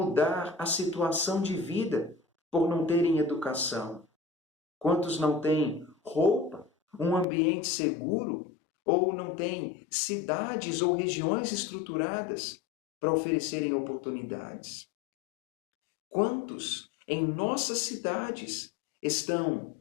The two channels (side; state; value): right; drops out; at 7.2 s